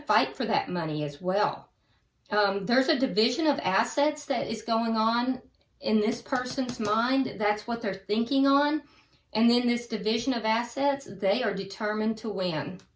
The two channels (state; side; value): identical; both; correlation 1.00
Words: fight for that money as well. There's a division of assets that is going on in this person's mind. That's what they're thinking on. And then this division of assets, they are determined to win.